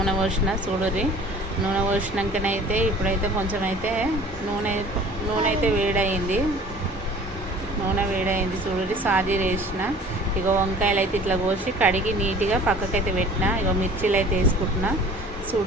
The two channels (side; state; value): both; normal; correlation 0.47